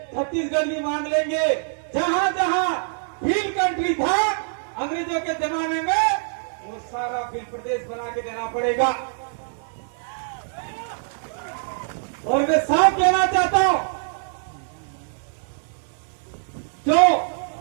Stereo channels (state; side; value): silent; left; digital silence